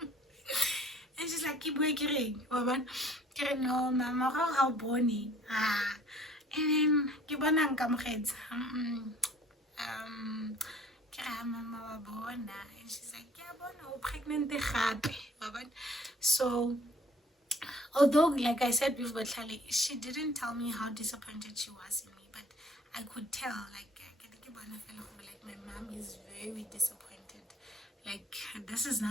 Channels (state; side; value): normal; both; correlation 0.54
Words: And she's like, keep working, no, mama, how bony. And then Kibana Kamreds. Mama Bona, and she's like, yeah, Bona, pregnant. So although, like I said with Botlhali, she didn't tell me how disappointed she was in me, but I could tell, like my mom is very disappointed. Like, this is